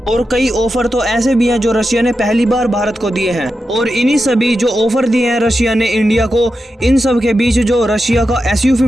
और कई ऑफर तो ऐसे भी हैं जो रशिया ने पहली बार भारत को दिए हैं। और इन्हीं सभी जो ऑफर दिए हैं रशिया ने इंडिया को, इन सब के बीच जो रशिया का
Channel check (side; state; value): both; normal; correlation 0.90